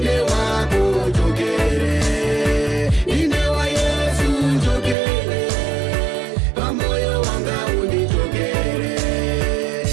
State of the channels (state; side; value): drops out; left; at 5.0 s